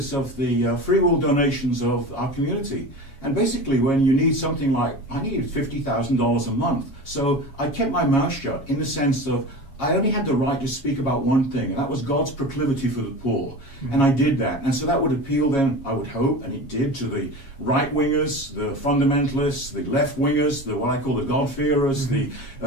of the free will donations of our community. And basically when you need something like, I needed $50,000 a month, so I kept my mouth shut in the sense of I only had the right to speak about one thing, and that was God's proclivity for the poor. And I did that. And so that would appeal then, I would hope, and it did, to the right-wingers, the fundamentalists, the left-wingers, what I call the God-fearers, the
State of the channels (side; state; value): right; late; 7.3 ms